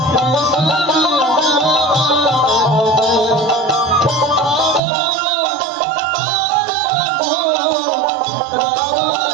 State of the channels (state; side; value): drops out; left; at 4.8 s